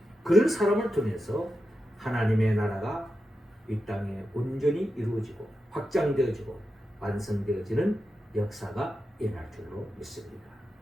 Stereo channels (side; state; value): both; normal; correlation 0.89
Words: 그런 사람을 통해서 하나님의 나라가 이 땅에 온전히 이루어지고 확장되어지고 완성되어지는 역사가 일어날 줄로 믿습니다.